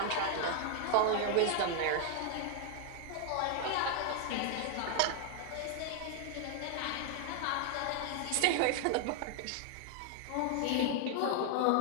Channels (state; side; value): different; both; correlation 0.00